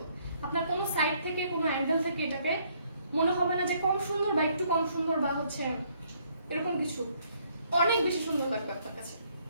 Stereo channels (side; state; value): both; inverted; correlation -0.67